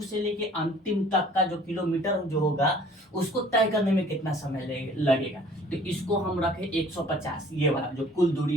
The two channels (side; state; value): both; normal; correlation 0.53